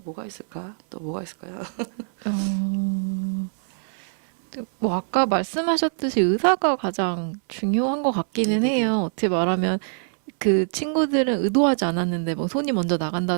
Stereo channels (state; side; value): silent; left; 63 dB below the other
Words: 뭐가 있을까? 또 뭐가 있을까요? 뭐 아까 말씀하셨듯이 의사가 가장 중요한 것 같기는 네네네. 해요. 어떻게 말하면 그 친구들은 의도하지 않았는데 뭐 손이 먼저